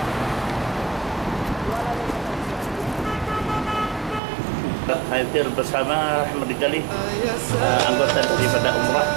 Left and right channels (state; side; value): drops out; left; at 4.2 s